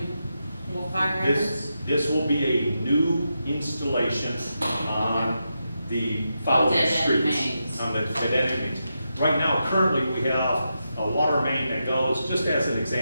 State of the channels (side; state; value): both; inverted; correlation -0.87